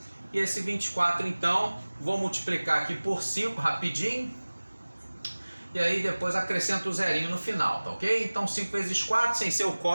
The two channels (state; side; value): inverted; both; correlation -1.00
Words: e esse 24 então, vou multiplicar aqui por 5 rapidinho, e aí depois acrescento o zerinho no final, tá ok? Então 5 vezes 4, sem ser o